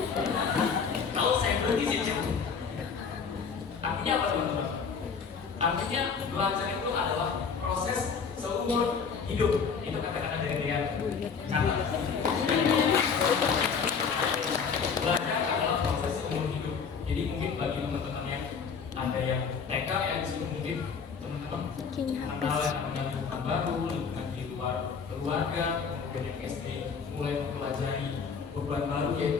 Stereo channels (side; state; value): right; quieter; 5.9 dB